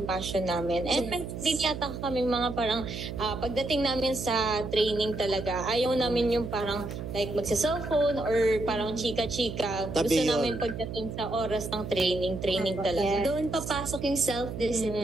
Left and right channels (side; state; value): right; noise; hum, 7 dB below the sound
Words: passion namin. And din yata kami mga parang pagdating namin sa training talaga, ayaw namin yung parang like magsa-cellphone or parang chika-chika. Gusto namin pagdating sa oras ng training talaga. Doon papasok yung